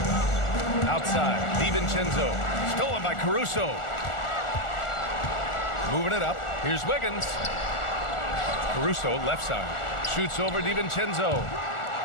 Outside, DiVincenzo. Stolen by Caruso. Moving it up. Here's Wiggins. Caruso, left side. Shoots over DiVincenzo.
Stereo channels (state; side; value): late; right; 1.4 ms